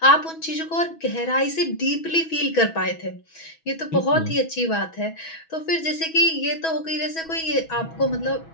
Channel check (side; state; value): right; late; 6.2 ms